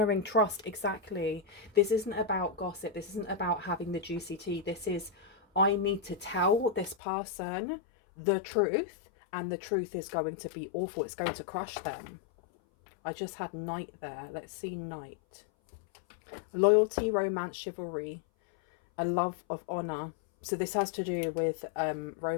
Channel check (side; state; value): right; drops out; at 7.0 s